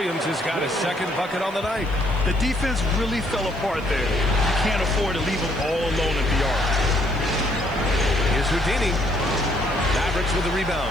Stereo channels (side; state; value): right; noise; hiss, 26 dB below the sound